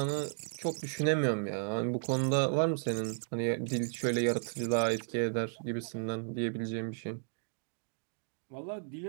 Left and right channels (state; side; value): silent; left; digital silence